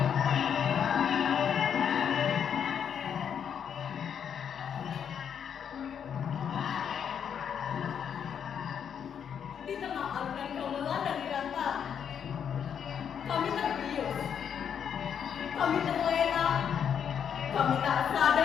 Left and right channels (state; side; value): quieter; right; 8.0 dB